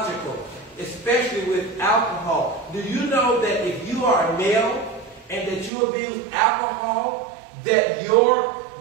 especially with alcohol. Do you know that if you are a male and that you abuse alcohol, that your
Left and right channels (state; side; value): drops out; left; at 5.7 s